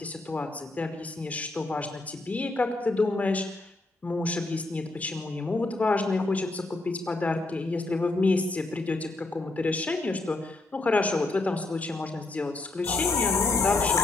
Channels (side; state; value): right; quieter; 3.1 dB